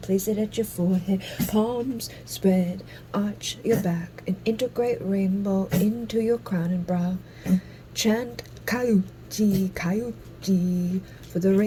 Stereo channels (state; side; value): identical; both; correlation 1.00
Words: Place it at your forehead. Palms spread. Arch your back. And integrate rainbow into your crown and brow. Chant Kayuchi, Kayuchi for the